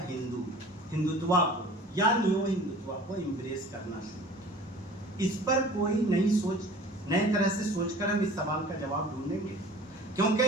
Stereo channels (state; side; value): normal; both; correlation 0.44